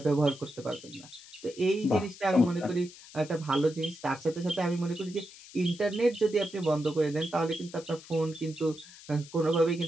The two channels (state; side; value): noise; left; hiss, 19 dB below the sound